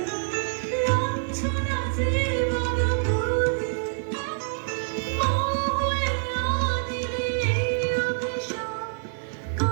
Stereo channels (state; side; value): silent; left; digital silence